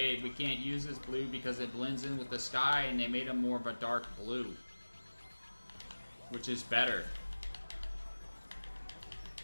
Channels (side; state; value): both; inverted; correlation -1.00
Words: we can't use this blue because it blends in with the sky, and they made him more of a dark blue, which is better.